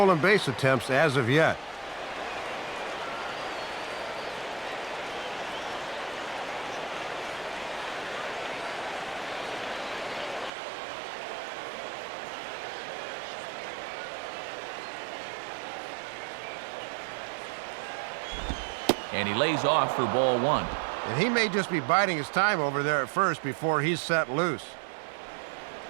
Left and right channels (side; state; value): left; drops out; at 10.5 s